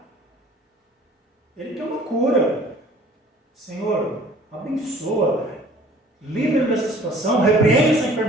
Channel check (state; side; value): normal; both; correlation 0.51